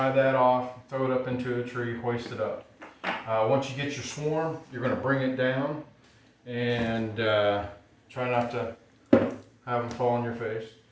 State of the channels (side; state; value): both; identical; correlation 1.00